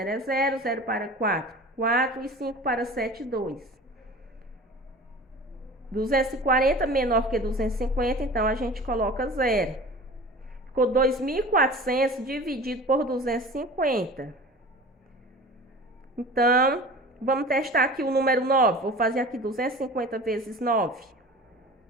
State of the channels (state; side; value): normal; both; correlation 0.39